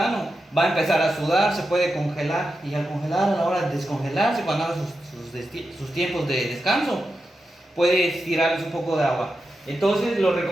va a empezar a sudar, se puede congelar, y al congelar, a la hora de descongelarse, cuando haga sus tiempos de descanso, puede tirarles un poco de agua. Entonces lo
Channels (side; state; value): both; normal; correlation 0.89